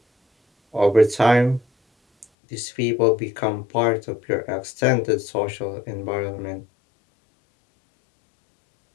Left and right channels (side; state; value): right; drops out; at 2.2 s